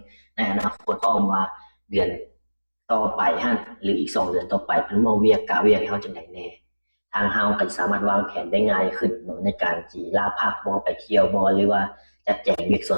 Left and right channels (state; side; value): inverted; both; correlation -1.00